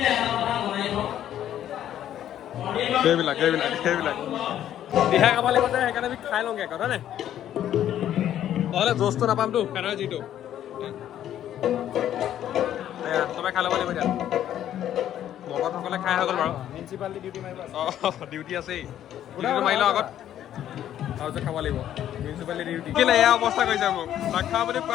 সেইবিলাক দিহা খাব লাগিব যে সেইকাৰণে আমি খাই লওঁগে কথা নে নহ'লে জোচটো নাপামতো ফেনৰ যিটো চবে খাই ল'ব লাগিব এতিয়া ভকতসকলে খাই হৈ গ'ল বাৰু মিউনিচিপালিটি ডিউটি মাৰিব ডিউটি আছেই ডিউটিটো মাৰি লওঁ আগত তাৰপিছত খাব লাগিব মিউনিচিপালিটি ডিউটি কেলে এয়া অৱস্থা কৰিছে মোক নাখা বুলি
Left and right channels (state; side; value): quieter; right; 11.2 dB